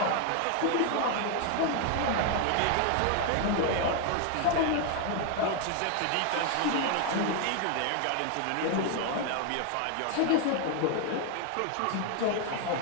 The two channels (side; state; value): both; different; correlation 0.01